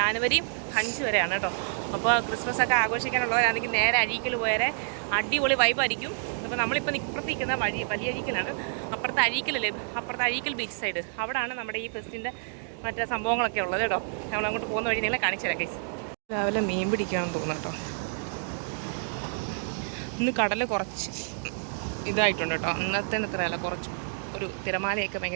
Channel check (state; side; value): silent; left; digital silence